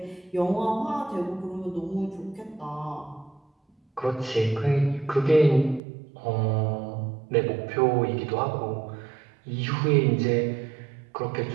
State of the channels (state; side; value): drops out; left; at 5.8 s